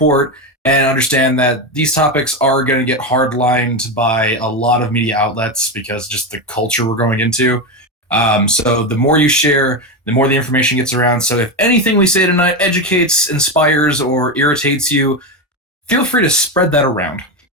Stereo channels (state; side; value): normal; both; correlation 0.14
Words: and understand that these topics are going to get hardlined by a lot of media outlets because just the culture we're going into. So the more you share, the more the information gets around. So if anything we say tonight educates, inspires, or irritates you, feel free to spread that around.